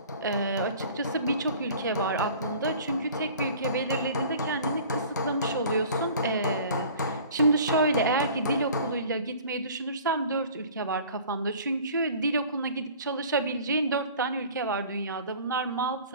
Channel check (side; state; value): both; inverted; correlation -0.46